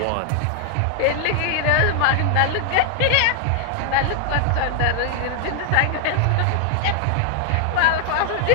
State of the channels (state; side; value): different; both; correlation 0.00